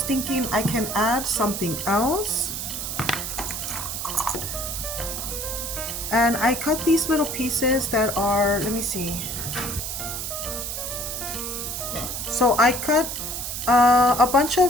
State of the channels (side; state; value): right; noise; hiss, 4 dB below the sound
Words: thinking I can add something else. And I cut these little pieces that are, let me see. So I cut a bunch of